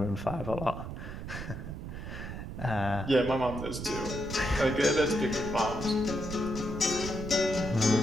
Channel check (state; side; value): noise; right; rumble, 8 dB below the sound